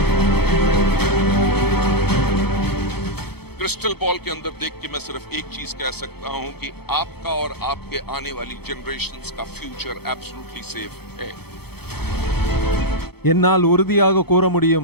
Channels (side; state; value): right; late; 0.96 ms